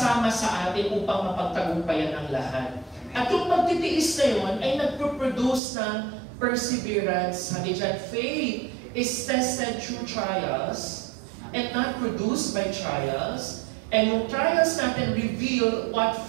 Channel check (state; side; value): drops out; left; at 5.6 s